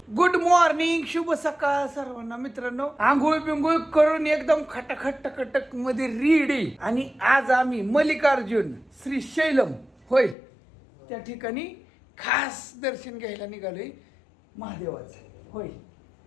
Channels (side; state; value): right; drops out; at 10.4 s